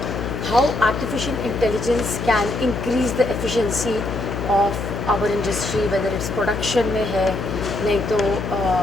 how artificial intelligence can increase the efficiency of our industry, whether it's production में है, नहीं तो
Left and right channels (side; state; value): left; noise; hum, 5 dB below the sound